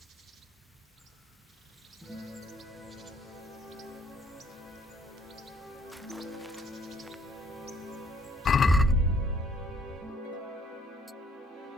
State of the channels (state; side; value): normal; both; correlation 0.63